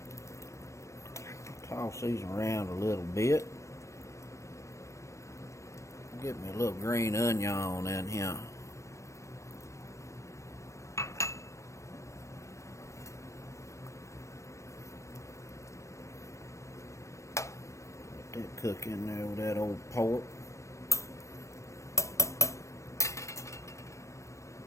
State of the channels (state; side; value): late; right; 0.15 ms